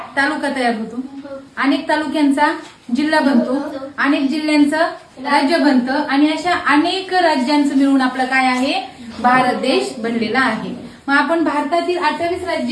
तालुका तयार होतो, अनेक तालुक्यांचा जिल्हा बनतो, अनेक जिल्ह्यांचं राज्य बनतं आणि अशा अनेक राज्यांचं मिळून आपलं काय आहे, भारत देश बनलेला आहे. मग आपण भारतातील 28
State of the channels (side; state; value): both; identical; correlation 1.00